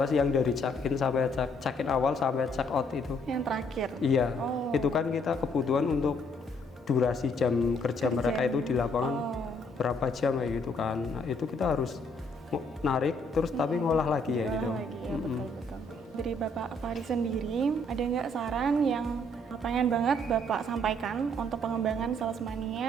yang dari check-in sampai check-in awal sampai check-out itu. Yang terakhir? Iya, itu kan kita kebutuhan untuk durasi jam kerja mereka itu di lapangan berapa jam kayak gitu kan. Nah, itu kita harus narik terus tapi ngolah lagi ya gitu. Betul. Dari Bapak Fahri sendiri, ada nggak saran yang pengen banget Bapak sampaikan untuk pengembangan Sales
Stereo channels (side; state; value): both; normal; correlation 0.67